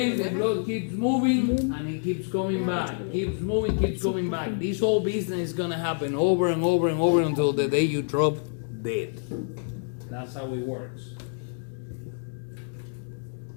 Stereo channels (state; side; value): silent; right; 56 dB below the other